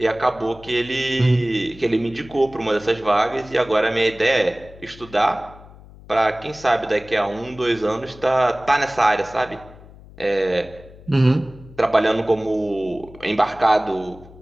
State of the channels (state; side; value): noise; left; hum, 21 dB below the sound